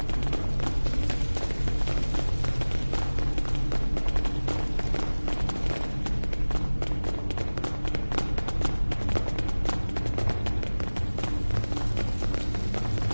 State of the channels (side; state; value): both; inverted; correlation -1.00